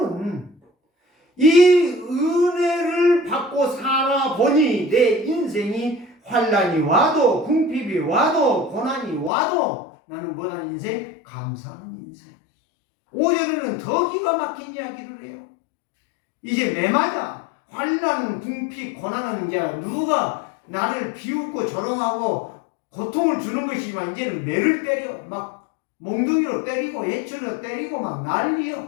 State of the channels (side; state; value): right; drops out; at 9.3 s